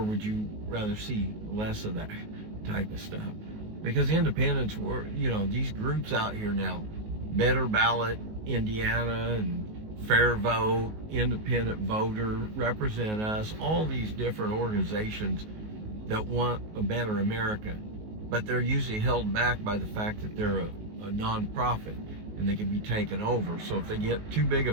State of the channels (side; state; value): left; late; 19 ms